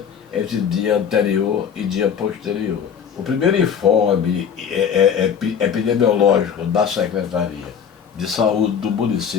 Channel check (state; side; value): quieter; right; 7.5 dB